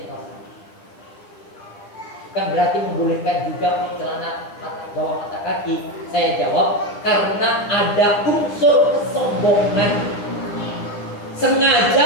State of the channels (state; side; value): late; right; 10 ms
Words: kalau bukan berarti membolehkan juga untuk celana bawah mata kaki. Saya jawab karena ada unsur kesombongan.